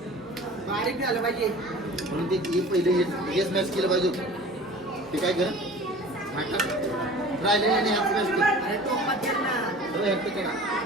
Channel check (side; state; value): both; normal; correlation 0.42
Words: बारीक झालं पाहिजे. म्हणून ते पहिले हे स्मॅश केलं पाहिजे. ते काय करा राहिलेलं नाही स्मॅश कर.